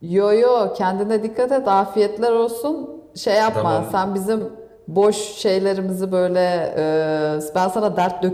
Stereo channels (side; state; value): both; identical; correlation 1.00